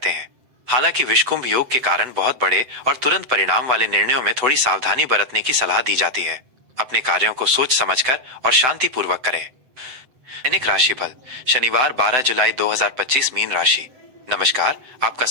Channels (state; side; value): late; left; 7.8 ms